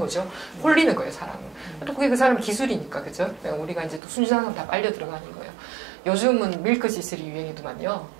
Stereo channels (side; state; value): left; drops out; at 4.0 s